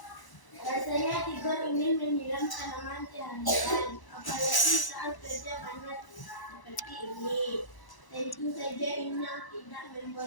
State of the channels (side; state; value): right; late; 1.0 ms